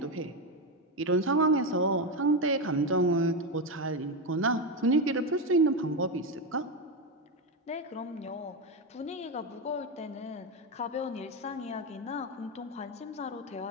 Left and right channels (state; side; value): normal; both; correlation 0.11